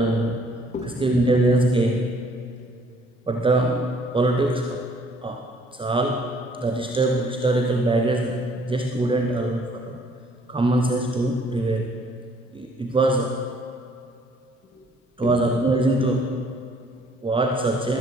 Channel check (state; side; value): normal; both; correlation 0.61